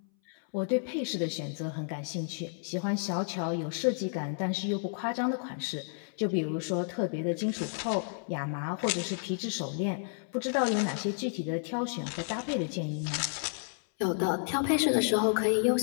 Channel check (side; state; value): right; silent; 57 dB below the other